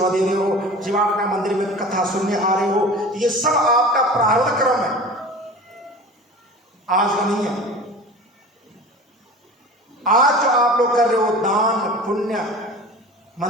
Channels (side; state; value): both; normal; correlation 0.37